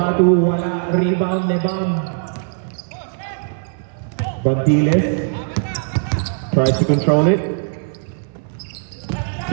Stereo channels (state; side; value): silent; left; 66 dB below the other